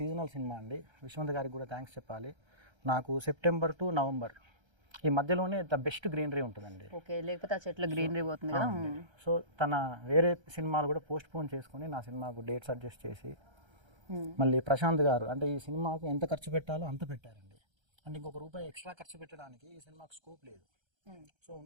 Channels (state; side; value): late; left; 1.3 ms